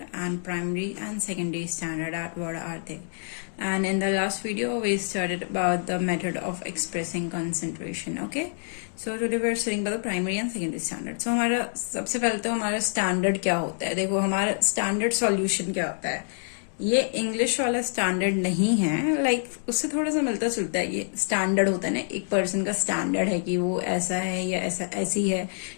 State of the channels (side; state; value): right; silent; digital silence